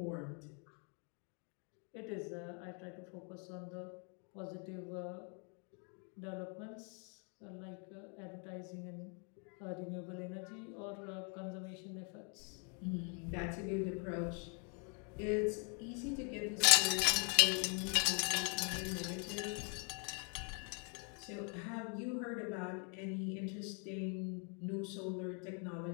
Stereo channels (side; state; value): right; quieter; 38.8 dB